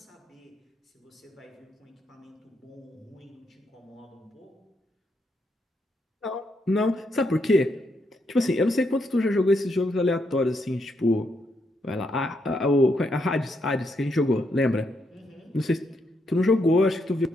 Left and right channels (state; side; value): normal; both; correlation 0.79